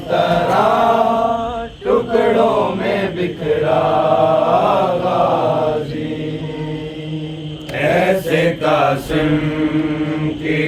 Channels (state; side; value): identical; both; correlation 1.00